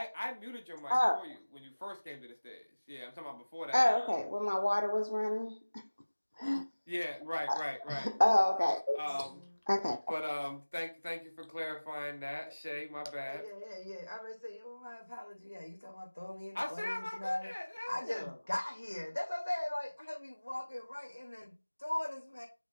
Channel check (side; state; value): both; inverted; correlation -1.00